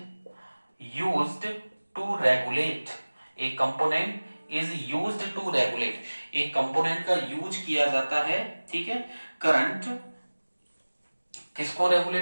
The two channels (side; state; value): both; inverted; correlation -1.00